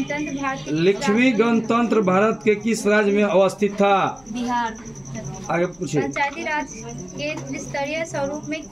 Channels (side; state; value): right; noise; hum, 30 dB below the sound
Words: लिच्छवी गणतंत्र भारत के किस राज्य में अवस्थित था? बिहार। आगे पूछिए। पंचायती राज के त्रिस्तरीय स्वरूप में